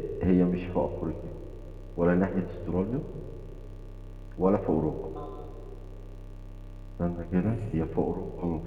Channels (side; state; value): both; identical; correlation 1.00